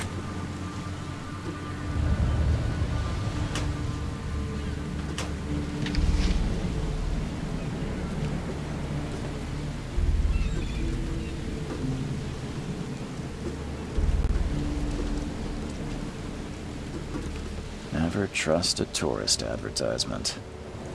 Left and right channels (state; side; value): identical; both; correlation 1.00